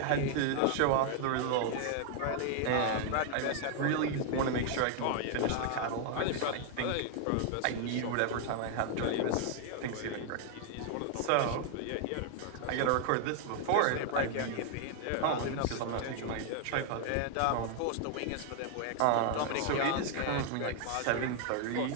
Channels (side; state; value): both; different; correlation 0.00